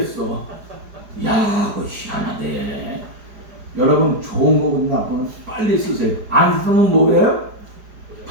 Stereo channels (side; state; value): left; late; 4.9 ms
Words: 야 그거 희한하대. 여러분 좋은 거고 나쁜 거 빨리 쓰세요. 안 쓰면 뭐예요?